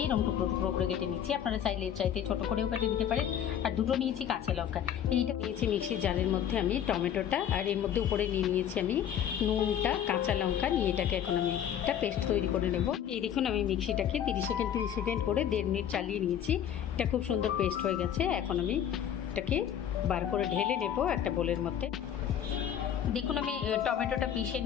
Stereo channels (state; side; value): quieter; right; 9.6 dB